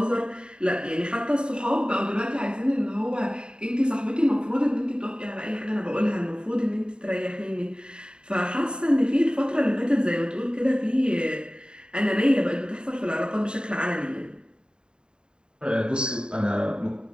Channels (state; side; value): late; left; 0.050 ms